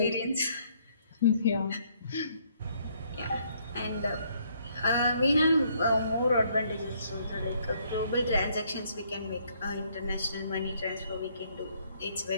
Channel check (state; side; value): inverted; both; correlation -0.68